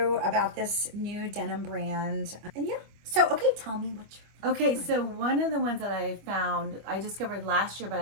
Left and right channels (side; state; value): left; late; 25 ms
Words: about this new denim brand. And yeah, so okay, tell me what you're... Okay, so one of the ones that I found, I discovered last year, but